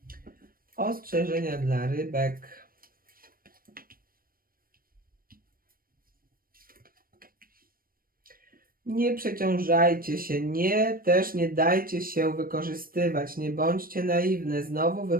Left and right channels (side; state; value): left; late; 0.42 ms